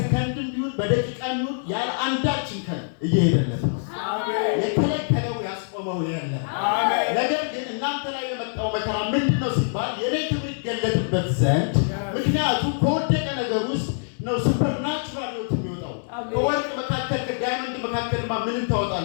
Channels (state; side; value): silent; right; 62 dB below the other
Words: ቢሆን በደቂቃም ቢሆን ያለ አንዳች እንከን እየሄደለት ነው። የከለከለው ያስቆመው የለም። ነገር ግን እናንተ ላይ የመጣው መከራ ምንድነው ሲባል የኔ ክብር ይገለጥበት ዘንድ። ምክንያቱም ከወደቀ ነገር ውስጥ ነው ሱፐርናቹራል ህይወት የሚወጣው። ከወርቅ መካከል ከዳይመንድ መካከልማ ምንን